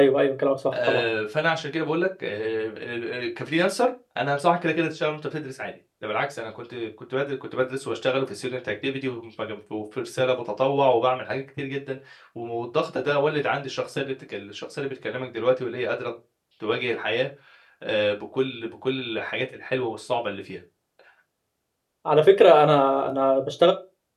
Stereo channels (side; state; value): both; identical; correlation 1.00